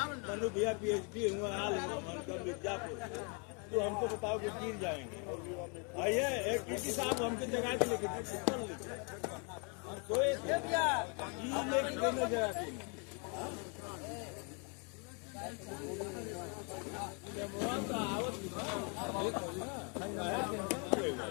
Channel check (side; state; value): right; quieter; 36.0 dB